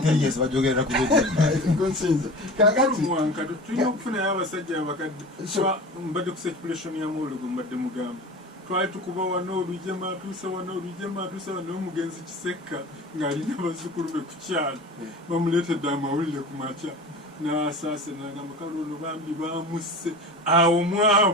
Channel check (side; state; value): both; normal; correlation 0.35